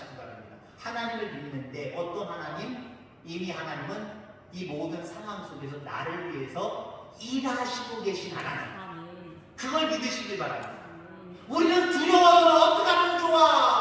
바랍니다. 하나님을 믿는데 어떤 하나님? 이미 하나님은 이 모든 상황 속에서 나를 위해서 일하시고 계신 하나님. 그걸 믿으시길 바랍니다. 우리는 두려워서 어떻게 하면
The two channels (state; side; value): identical; both; correlation 1.00